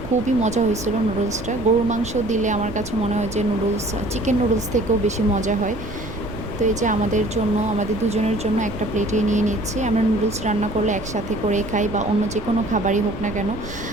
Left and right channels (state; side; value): noise; right; rumble, 11 dB below the sound